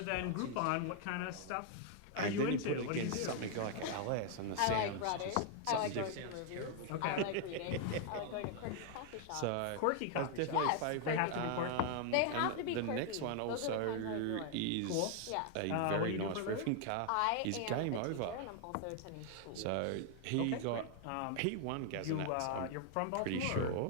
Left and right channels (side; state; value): both; different; correlation 0.00